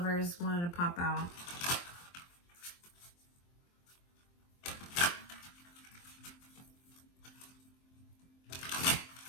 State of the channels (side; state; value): right; late; 23 ms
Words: wanted to pop out.